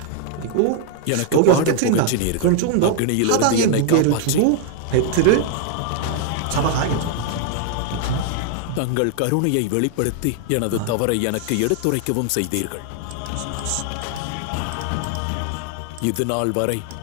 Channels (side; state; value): both; different; correlation 0.00